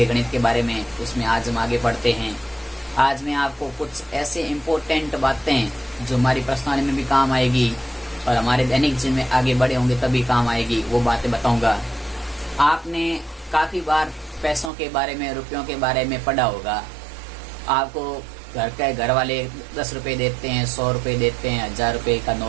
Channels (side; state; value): left; drops out; at 14.7 s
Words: गणित के बारे में, उसमें आज हम आगे बढ़ते हैं। आज मैं आपको कुछ ऐसे इम्पोर्टेंट बातें जो हमारी पर्सनालिटी में भी काम आएगी और हमारे दैनिक जीवन में आगे बढ़े होंगे तभी काम आएगी, वो बातें बताऊंगा। आपने काफ़ी बार पैसों के बारे में, रुपयों के बारे में पढ़ा होगा। आपको घर वाले 10 रुपये देते हैं, 100 रुपये देते हैं, 1000 रुपये का